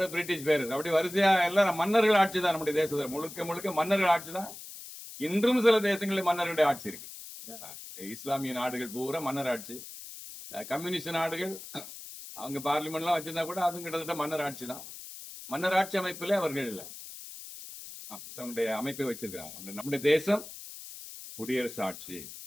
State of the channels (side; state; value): left; noise; hiss, 13 dB below the sound